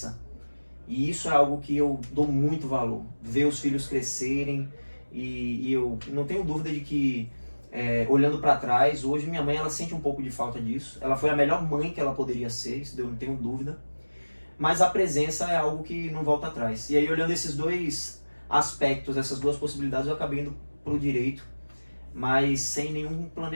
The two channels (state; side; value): inverted; both; correlation -1.00